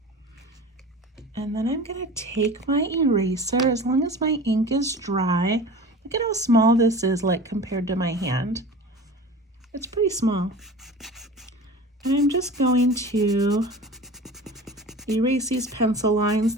And then I'm going to take my eraser, as long as my ink is dry. Look at how small this is, like compared to my hand. It's pretty small. And I'm just going to erase these pencil lines.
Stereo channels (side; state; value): both; normal; correlation 0.37